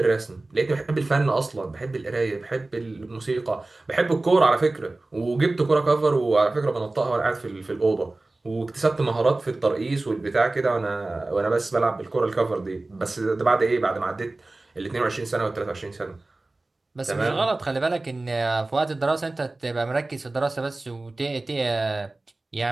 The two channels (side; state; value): left; quieter; 3.0 dB